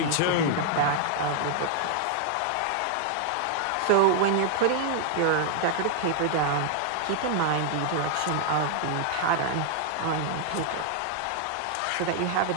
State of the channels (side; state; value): both; different; correlation 0.00